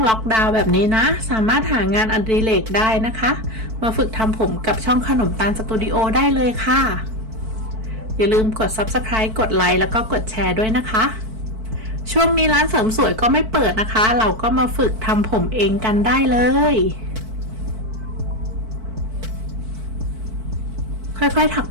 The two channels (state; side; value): late; left; 4.5 ms